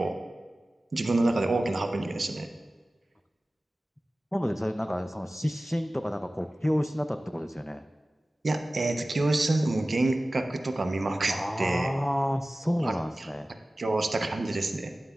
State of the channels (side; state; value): both; normal; correlation 0.97